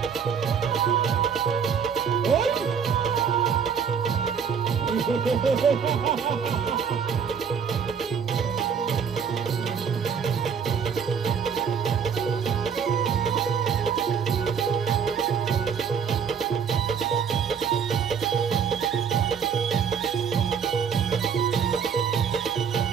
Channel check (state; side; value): quieter; left; 6.8 dB